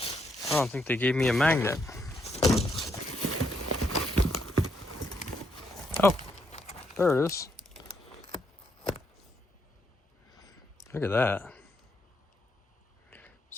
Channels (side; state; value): both; normal; correlation 0.76